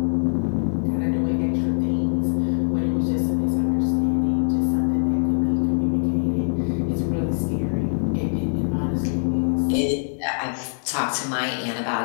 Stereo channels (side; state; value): right; silent; digital silence